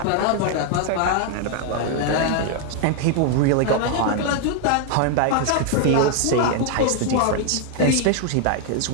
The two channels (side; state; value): both; different; correlation 0.00